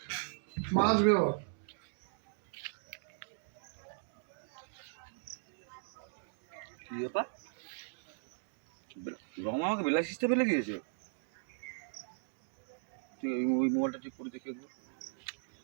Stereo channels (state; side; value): silent; left; digital silence